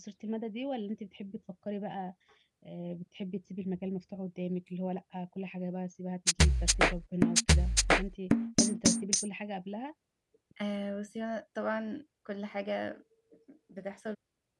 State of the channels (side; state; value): both; identical; correlation 1.00